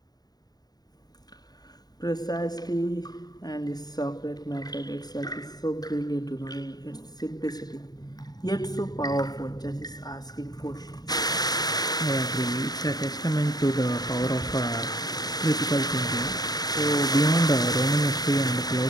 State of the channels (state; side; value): late; right; 0.19 ms